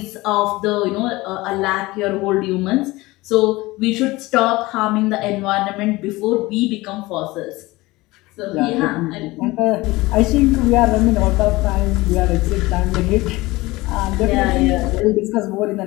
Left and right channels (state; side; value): quieter; right; 20.6 dB